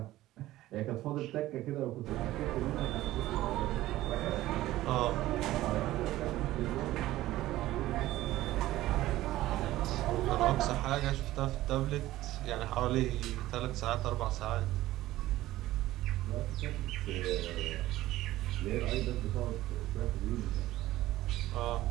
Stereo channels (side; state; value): left; quieter; 15.8 dB